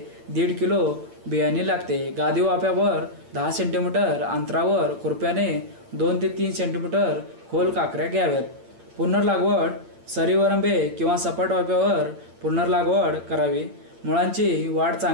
1.5 किलो बियाणे लागते. गादी वाफ्यावर 10 सेंटीमीटर अंतरावर खुरप्याने 2 ते 3 सेंटीमीटर खोल काकऱ्या घ्याव्यात. पुनर्लागवड. सरीवरंबे किंवा सपाट वाफ्यावर पुनर्लागवड करावी. मुळांची वाढ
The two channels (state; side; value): late; left; 8.7 ms